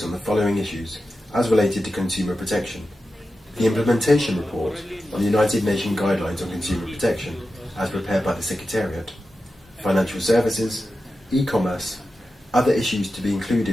on the following issues as related to consumer protection: the implementation report on the United Nations Guidelines on Consumer Protection as prepared by the Secretariat, financial services, e-commerce, other issues to be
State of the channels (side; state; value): both; normal; correlation 0.92